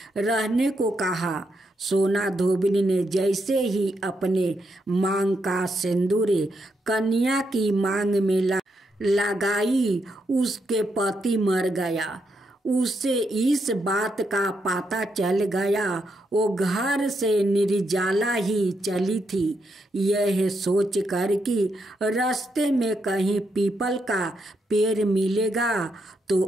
रहने को कहा। सोना धोबिन ने जैसे ही अपने मांग का सिंदूर कन्या की मांग में लगाई, उसके पति मर गया। उसे इस बात का पता चल गया, वो घर से निर्जला ही चली थी। यह सोच कर कि रास्ते में कहीं पीपल का पेड़ मिलेगा तो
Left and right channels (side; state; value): both; normal; correlation 0.81